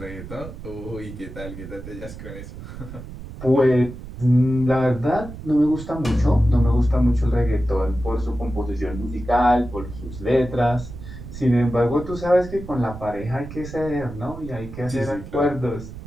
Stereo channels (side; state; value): right; noise; rumble, 12 dB below the sound